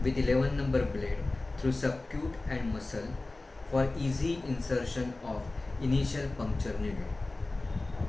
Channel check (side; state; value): right; quieter; 3.1 dB